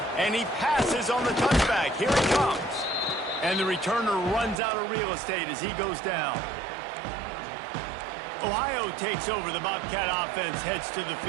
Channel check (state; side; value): drops out; left; at 4.5 s